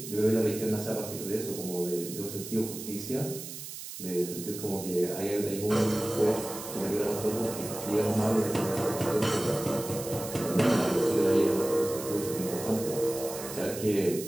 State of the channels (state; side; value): noise; right; hiss, 10 dB below the sound